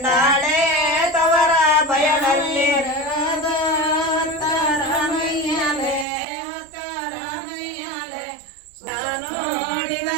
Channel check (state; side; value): drops out; left; at 6.1 s